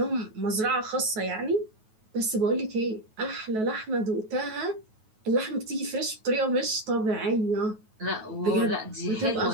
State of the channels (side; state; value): left; late; 9.3 ms